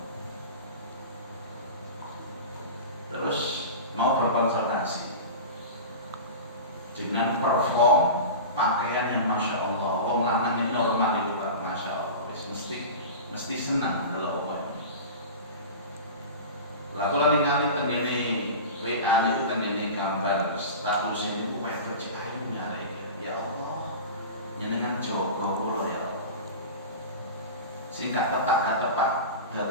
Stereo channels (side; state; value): both; inverted; correlation -0.30